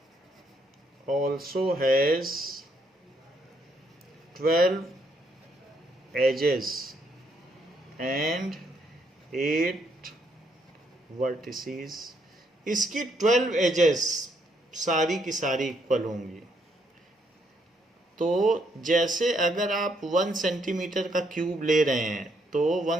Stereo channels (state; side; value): normal; both; correlation 0.73